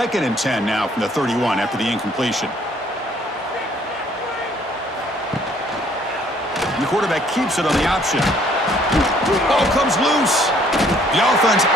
and 10 now from the 31 after the incompletion. And the quarterback keeps it on the option. Ball comes loose. The offense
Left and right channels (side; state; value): both; normal; correlation 0.62